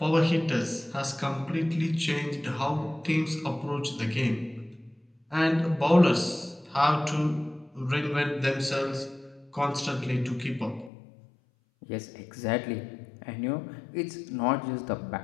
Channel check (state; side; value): drops out; right; at 10.9 s